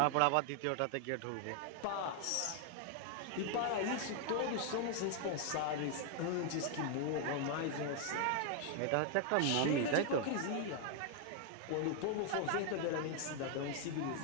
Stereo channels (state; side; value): different; both; correlation 0.00